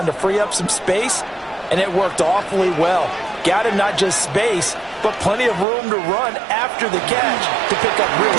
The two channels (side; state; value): left; drops out; at 5.7 s